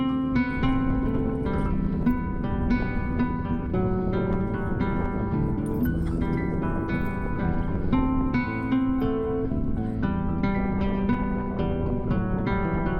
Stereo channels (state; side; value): identical; both; correlation 1.00